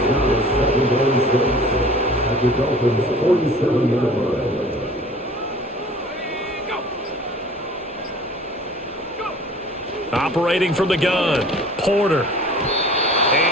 Operating from the gun, Porter.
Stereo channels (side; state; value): both; normal; correlation 0.46